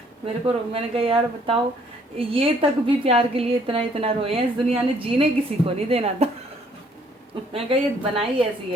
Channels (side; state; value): both; normal; correlation 0.63